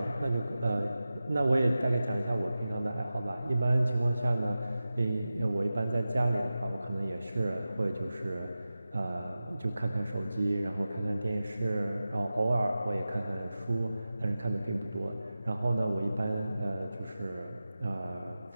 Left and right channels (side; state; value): both; inverted; correlation -0.94